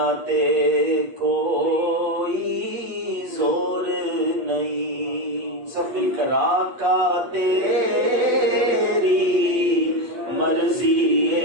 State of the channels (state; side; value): late; left; 8.5 ms